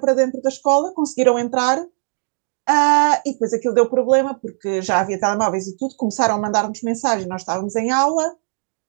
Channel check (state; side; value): silent; left; digital silence